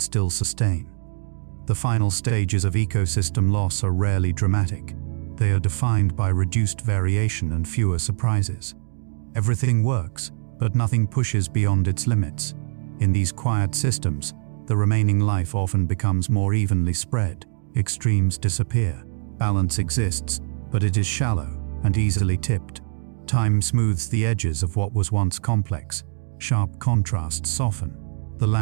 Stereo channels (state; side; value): silent; left; digital silence